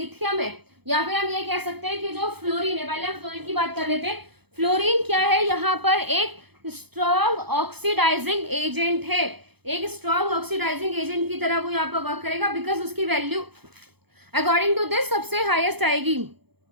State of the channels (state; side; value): late; left; 0.98 ms